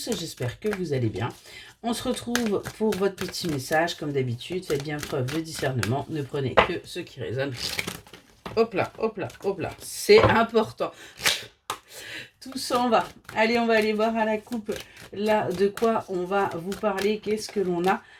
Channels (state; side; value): identical; both; correlation 1.00